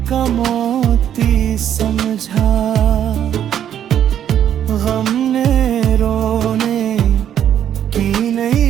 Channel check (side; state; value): left; quieter; 10.0 dB